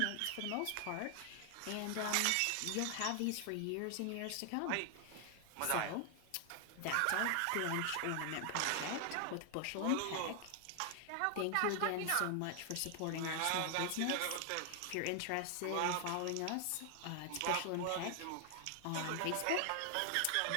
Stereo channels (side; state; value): both; different; correlation 0.00